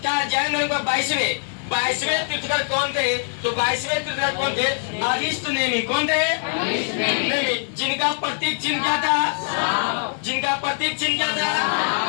तीर्थकर कौन थे? तो 22वें तीर्थकर कौन थे? अरिष्ट नेमि। कौन थे? नेमि। जिनका प्रतीक चिन्ह क्या था? जिनका प्रतीक चिन्ह क्या था?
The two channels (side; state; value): right; silent; 59 dB below the other